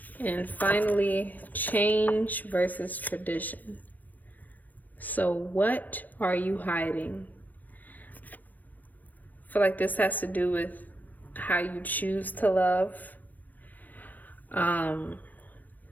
And finally, change versus tradition. So what are you hiding? I feel like this has to do with how you choose to love.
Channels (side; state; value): right; late; 0.082 ms